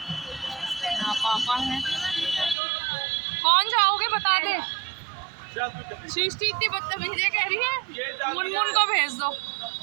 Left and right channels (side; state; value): left; drops out; at 2.6 s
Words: यहाँ पापा है। कौन जाओगे बता दे। सृष्टि इतनी बदतमीजी कह रही है, मुनमुन को भेज दो।